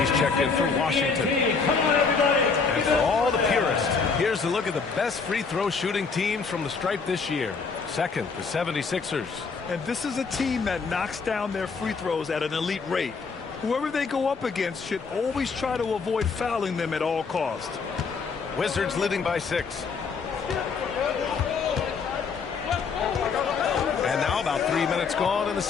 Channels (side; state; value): right; quieter; 5.1 dB